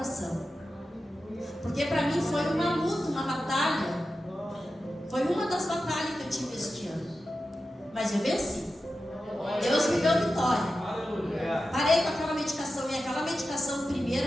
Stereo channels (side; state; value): both; normal; correlation 0.92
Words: Porque para mim foi uma luta, uma batalha. Foi uma das batalhas que eu tive este ano. Mas eu venci. Deus me deu vitória. Parei com aquela medicação. E aquela medicação